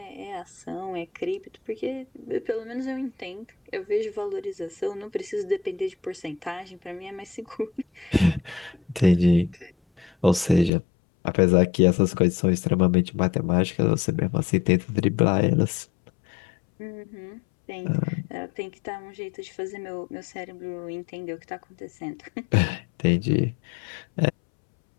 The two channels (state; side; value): drops out; right; at 10.7 s